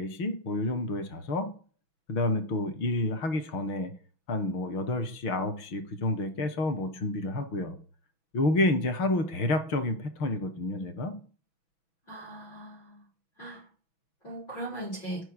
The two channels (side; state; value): right; late; 6.1 ms